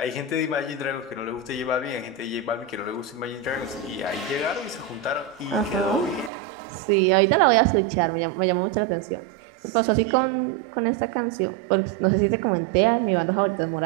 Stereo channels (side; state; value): left; drops out; at 6.3 s